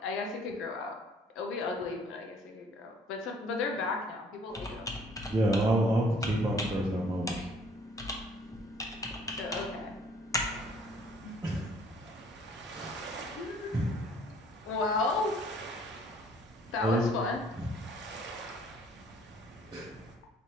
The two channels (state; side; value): normal; both; correlation 0.58